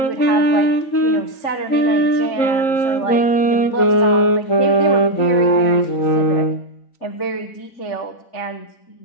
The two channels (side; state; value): right; late; 3.5 ms